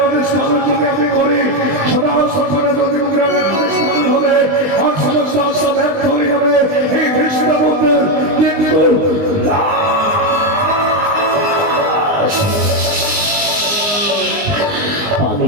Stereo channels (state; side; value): late; left; 19 ms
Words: আদেশ পালন যদি আমি করি সদা সর্বদা প্রতিমুখ রাজার আদেশ পালন হবে আর সমস্ত আশা ব্যর্থ হয়ে যাবে এই কৃষ্ণবন্ধের কিন্তু